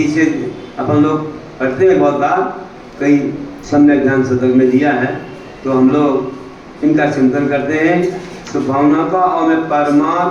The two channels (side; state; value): both; identical; correlation 1.00